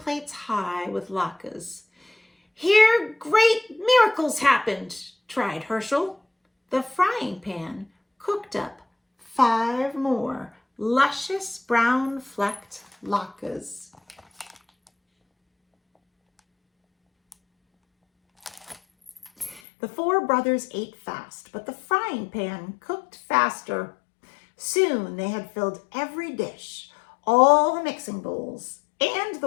high with latkes. Here great miracles happened, tried Herschel. The frying pan cooked up 5 more luscious brown flecked latkes. The 4 brothers ate fast, but the frying pan cooked faster. Soon they had filled every dish, all the mixing bowls, and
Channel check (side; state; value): right; drops out; at 19.6 s